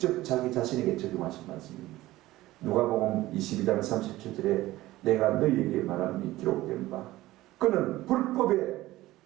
자기 자신에게 적용하신 말씀입니다. 누가복음 22장 37절에 내가 너희에게 말하니 기록된 바 그는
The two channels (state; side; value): quieter; left; 17.1 dB